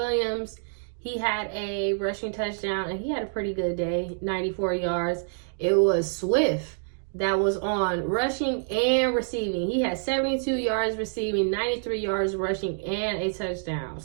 he had a rushing touchdown, and he had a pretty good day, 94 yards. It was Swift that was on rushing and receiving. He had 72 yards receiving, 93 yards rushing, and a touchdown.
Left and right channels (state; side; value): silent; left; digital silence